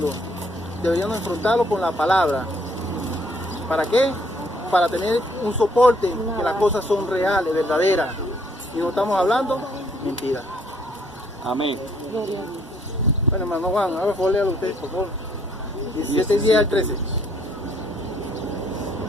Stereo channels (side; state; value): both; normal; correlation 0.66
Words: deberíamos enfrentarlo con la palabra. ¿Para qué? Para tener un soporte, que las cosas son reales, verdaderas, y no estamos hablando mentiras. Amén. Gloria a Dios. Bueno, hermano Juan, a ver, léalo usted, por favor. 17:10 al 13.